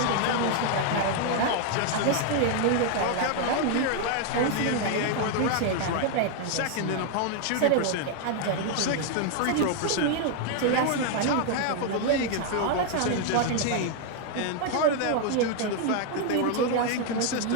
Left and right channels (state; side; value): different; both; correlation 0.00